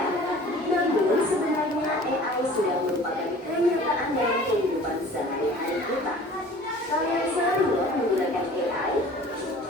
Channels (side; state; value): both; normal; correlation 0.46